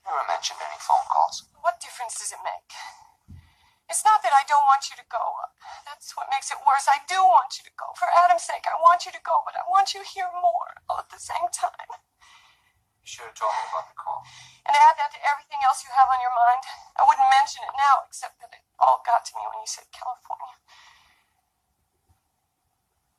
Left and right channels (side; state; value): both; identical; correlation 1.00